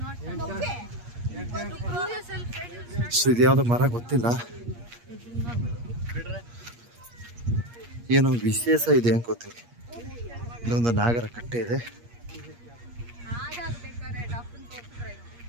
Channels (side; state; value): left; late; 8.5 ms